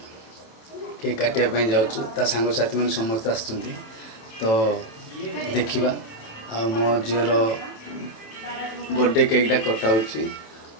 केक काटापी जाऊँ सांग साथी मैंने समस्त आस तो देखा आ मो झीर बर्थडे केकटा कटाऊँ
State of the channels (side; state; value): right; late; 27 ms